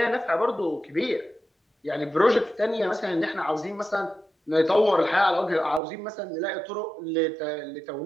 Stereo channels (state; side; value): drops out; left; at 5.8 s